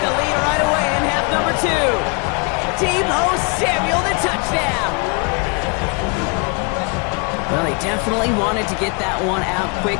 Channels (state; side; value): quieter; right; 34.1 dB